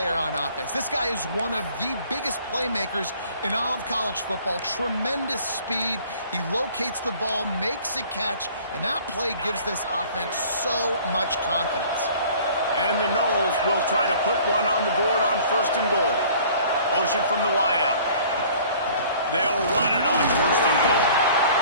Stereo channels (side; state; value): both; inverted; correlation -0.52